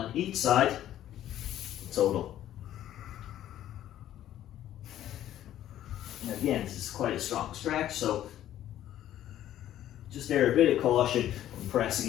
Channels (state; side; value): quieter; right; 12.2 dB